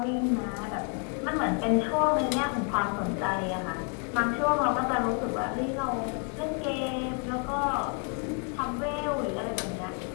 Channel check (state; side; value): quieter; right; 37.9 dB